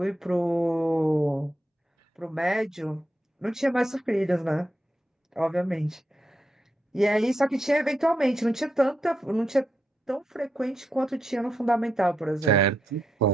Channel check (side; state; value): both; normal; correlation 0.84